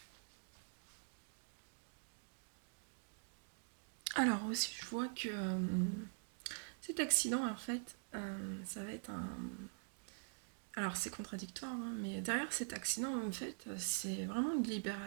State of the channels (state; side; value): silent; left; digital silence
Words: alors aussi, je vois que cet accident, en fait, ça va être un... Alors c'est contradictoire, hein, mais derrière cet accident, en fait, c'est vraiment